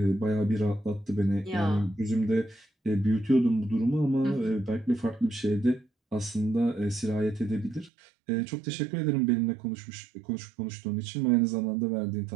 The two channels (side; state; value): left; drops out; at 7.9 s